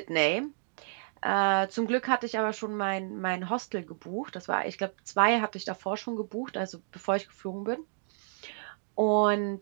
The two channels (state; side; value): silent; left; digital silence